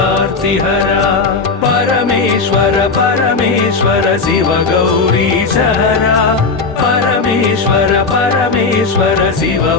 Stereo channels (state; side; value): quieter; right; 4.3 dB